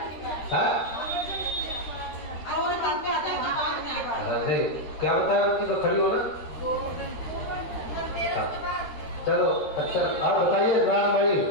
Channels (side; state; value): right; late; 13 ms